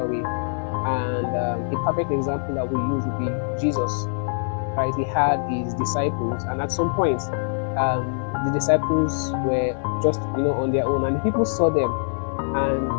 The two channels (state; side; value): silent; right; digital silence